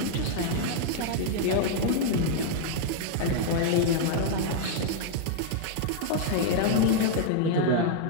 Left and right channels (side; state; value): both; different; correlation -0.01